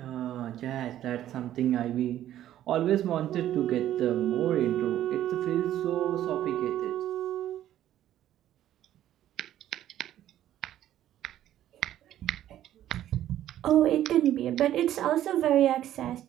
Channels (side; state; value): left; quieter; 12.2 dB